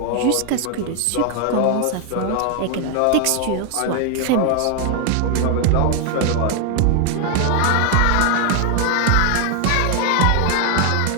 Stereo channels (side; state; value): both; different; correlation 0.00